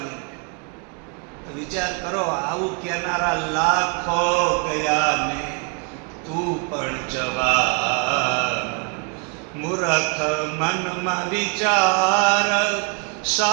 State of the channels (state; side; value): quieter; left; 35.6 dB